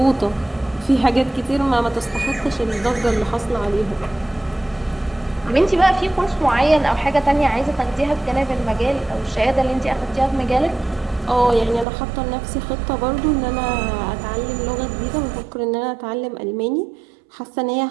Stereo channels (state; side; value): drops out; left; at 11.9 s